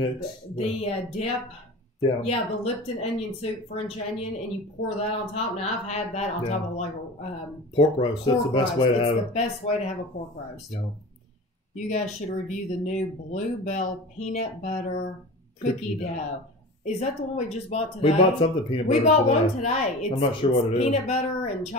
The dip. Yeah. Yeah, the Lipton onion soup, French onion, and you pour that on top. Now, I've had that on top of like a pork roast. That's the best way to have it. It's the best way to have a pork roast. Yeah. You guys should review the new Bluebell peanut butter cookie dough. Is that the one we just bought today? We bought something peanut butter. We bought today. one today. I'm not sure what it is. Peanut butter and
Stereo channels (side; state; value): both; normal; correlation 0.34